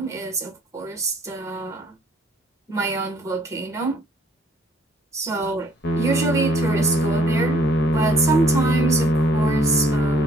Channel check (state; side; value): normal; both; correlation 0.62